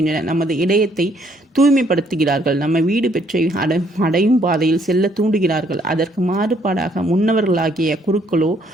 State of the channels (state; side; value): normal; both; correlation 0.67